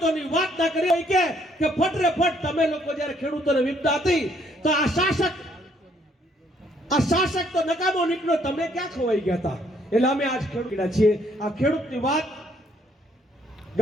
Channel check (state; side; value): normal; both; correlation 0.67